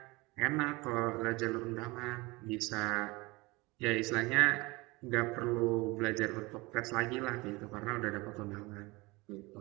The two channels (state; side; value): quieter; left; 23.5 dB